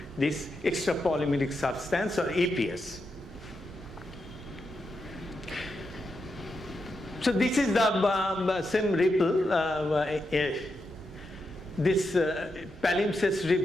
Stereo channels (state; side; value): normal; both; correlation 0.85